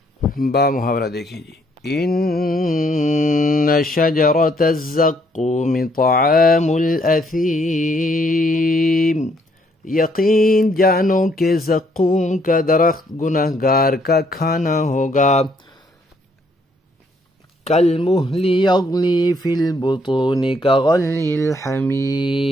با محاورہ دیکھیں جی، ان شجرۃ الزقوم طعام الاثیم، یقین جانو کہ زقوم کا درخت گنہگار کا کھانا ہوگا، کالمہل یغلی فی البطون کغلی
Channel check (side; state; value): both; normal; correlation 0.69